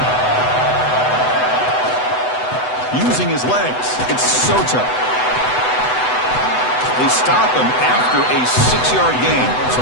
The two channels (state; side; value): late; right; 8.0 ms